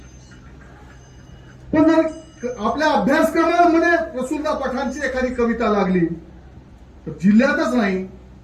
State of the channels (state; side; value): identical; both; correlation 1.00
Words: पण जर आपल्या अभ्यासक्रमामध्ये रसूलदा पठाणची एखादी कविता लागली तर जिल्ह्यातच नाही